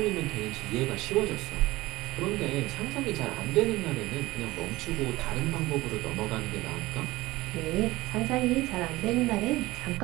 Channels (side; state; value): left; quieter; 19.0 dB